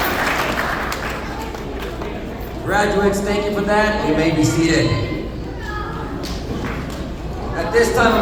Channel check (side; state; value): both; identical; correlation 1.00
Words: Graduates, thank you for that. You may be seated. At this time,